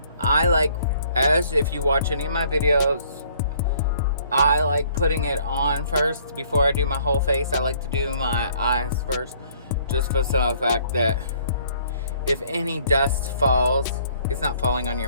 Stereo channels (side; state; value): both; inverted; correlation -0.61